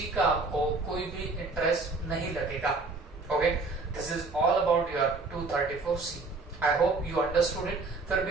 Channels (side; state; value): left; quieter; 3.6 dB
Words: का आपको कोई भी इंटरेस्ट नहीं लगेगा। Okay, this is all about your 234C। I hope you understood it. फिर